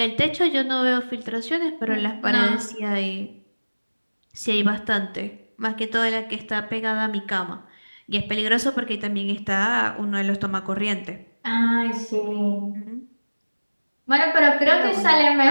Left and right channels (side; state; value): both; inverted; correlation -1.00